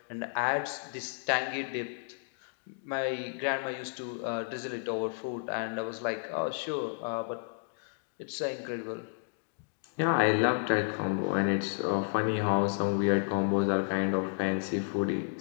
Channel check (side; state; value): right; silent; digital silence